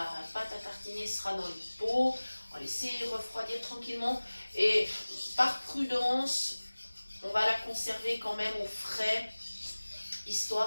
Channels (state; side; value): inverted; both; correlation -1.00